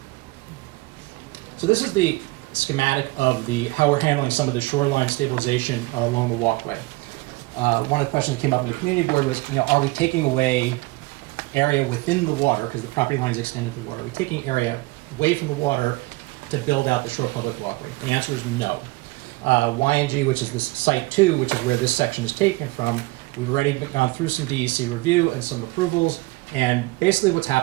So this is the schematic of how we're handling some of the shoreline stabilization along the walkway. One of the questions that came up in the community board was, are we taking away area within the water, because the property line is extended to the water, are we taking area away from the water to build out the shore public walkway? The answer is no. YNG, which is this site 2, which is where this section is taken from, we've already gone through some DEC review and some approvals, and basically what's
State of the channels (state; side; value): quieter; left; 22.3 dB